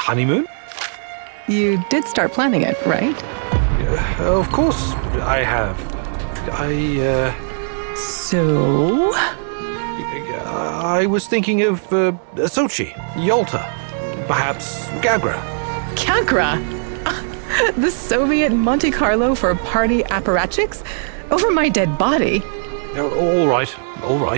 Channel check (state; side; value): silent; left; 67 dB below the other